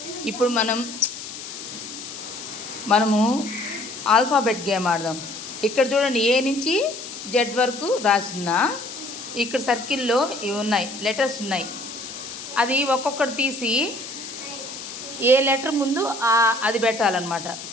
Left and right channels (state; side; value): noise; left; hiss, 10 dB below the sound